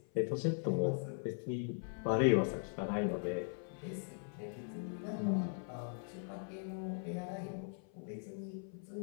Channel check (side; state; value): right; silent; 51 dB below the other